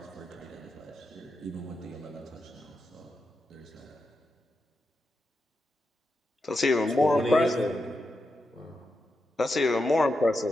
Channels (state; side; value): normal; both; correlation 0.87